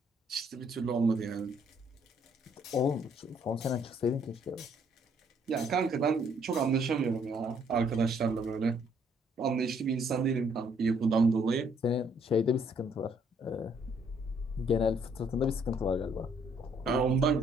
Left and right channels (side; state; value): both; normal; correlation 0.66